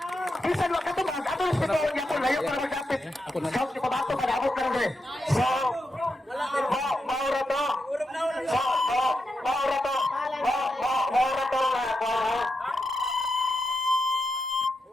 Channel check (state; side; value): normal; both; correlation 0.86